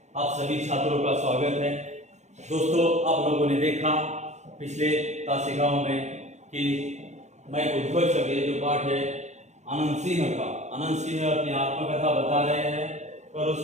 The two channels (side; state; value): left; late; 0.33 ms